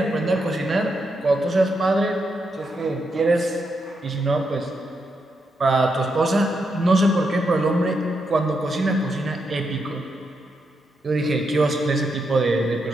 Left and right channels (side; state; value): both; normal; correlation 0.82